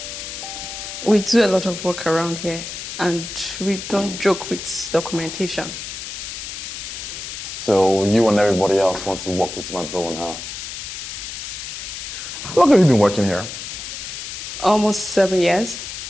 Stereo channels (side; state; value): left; noise; hiss, 8 dB below the sound